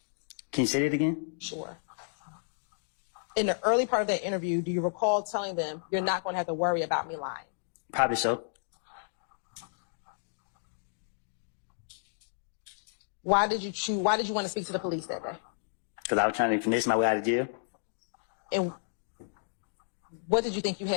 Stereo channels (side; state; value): right; silent; digital silence